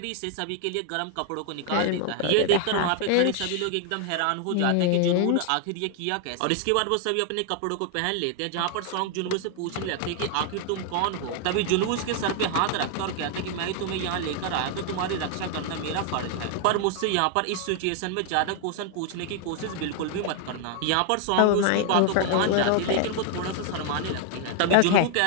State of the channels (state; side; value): different; both; correlation 0.00